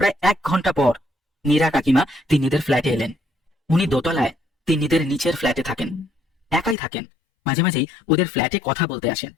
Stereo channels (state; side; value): drops out; right; at 6.8 s